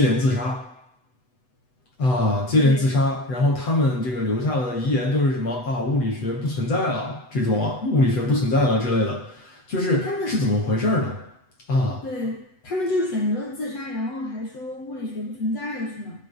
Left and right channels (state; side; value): late; right; 8.0 ms